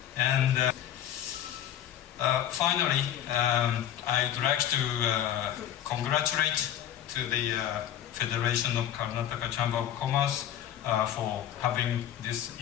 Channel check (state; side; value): quieter; right; 10.9 dB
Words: And finally, I'd like to congratulate to the Federation of Karnataka Chamber of Commerce for having this